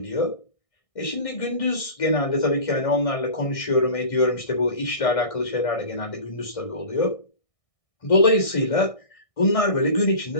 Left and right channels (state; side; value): late; right; 1.6 ms